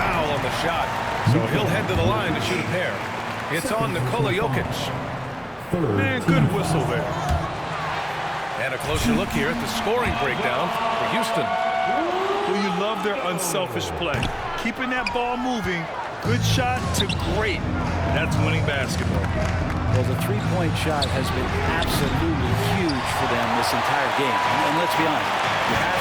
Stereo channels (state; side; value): identical; both; correlation 1.00